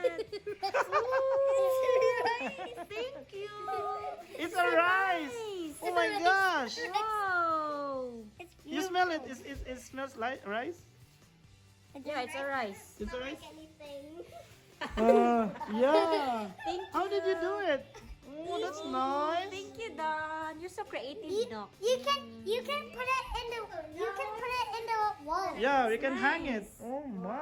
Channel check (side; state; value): both; identical; correlation 1.00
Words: Thank you! It's a rice. Nice! Oh my gosh. Wow! You smell it. It smells like rice. Yeah, it's a rice. It's a rice. Anything. Yeah. Thank you. How did you do it? Oh, that's nice. Thank you, Don. you're so creative, no? You can put it in the wall. Yeah, we can hang it. Oh